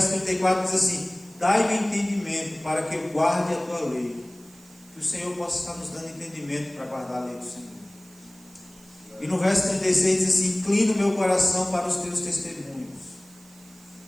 34 diz assim: dai-me entendimento para que eu guarde a tua lei. Que o Senhor possa estar nos dando entendimento para guardar a lei do Senhor. E no verso 36 diz assim: inclina o meu coração para os teus testemunhos.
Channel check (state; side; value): noise; right; hiss, 25 dB below the sound